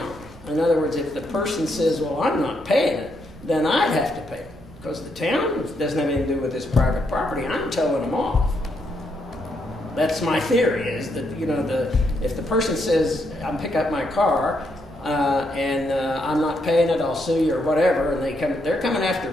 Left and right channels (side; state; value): both; normal; correlation 0.77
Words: In other words, if the person says, well, I'm not paying it, then I'd have to pay it. Because the town doesn't have anything to do with this private property. I'm towing them off. That's my theory, is that, you know, if the person says, I'm pick up my car, and I'm not paying it, I'll sue you or whatever, and they're coming after